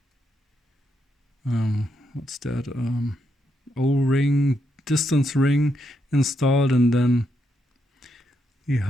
what's that, O-ring, distance ring installed, and then the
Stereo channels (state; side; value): normal; both; correlation 0.81